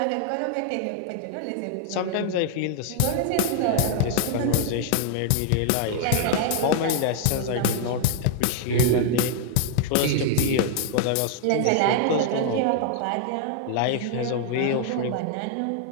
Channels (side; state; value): both; different; correlation -0.01